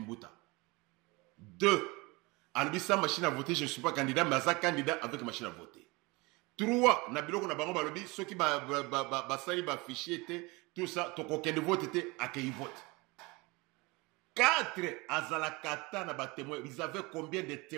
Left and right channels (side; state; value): left; quieter; 25.1 dB